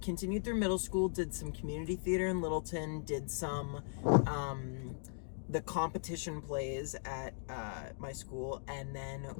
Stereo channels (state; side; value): silent; right; digital silence